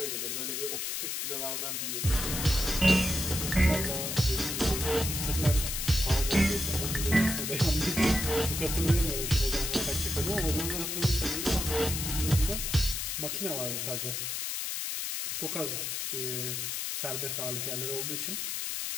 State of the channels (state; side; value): noise; left; hiss, 2 dB below the sound